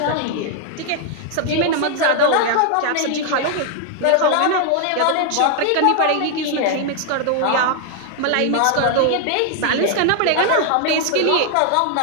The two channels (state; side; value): different; both; correlation 0.00